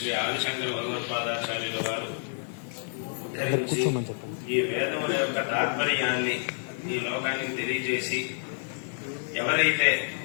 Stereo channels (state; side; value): silent; right; digital silence